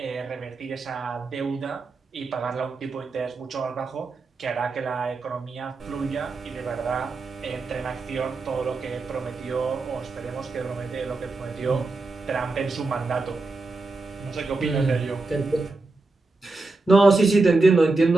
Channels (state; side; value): quieter; left; 3.5 dB